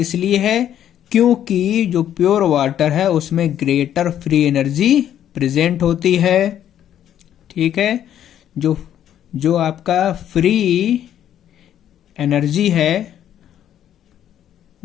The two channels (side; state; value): right; quieter; 10.6 dB